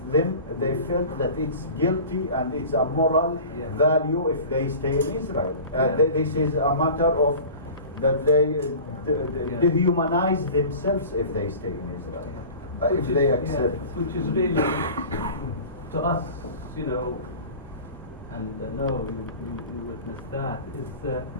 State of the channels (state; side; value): inverted; both; correlation -0.38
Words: them, they felt that it's guilty and it's a moral value if they stay in Israel. They say it's a matter of that they dehumanize themselves if they stay in Israel. If they accept. Which is really, to us, you know, and I know you witnessed that, is